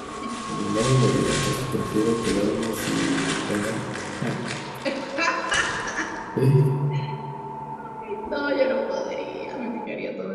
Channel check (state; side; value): identical; both; correlation 1.00